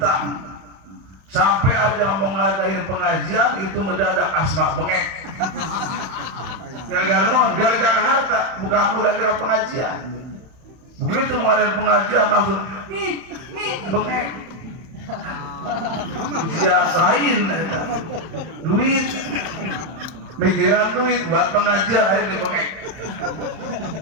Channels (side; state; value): left; late; 31 ms